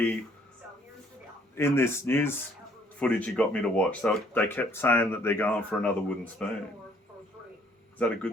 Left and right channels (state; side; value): normal; both; correlation 0.62